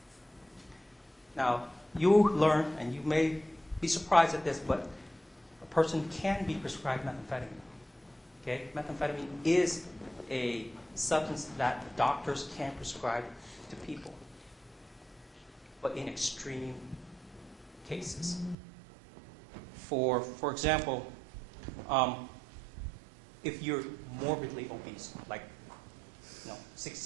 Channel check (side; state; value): left; drops out; at 18.6 s